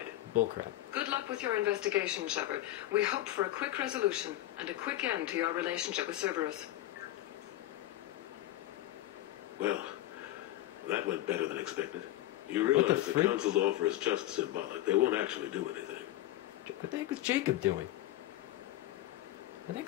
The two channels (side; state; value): right; quieter; 14.7 dB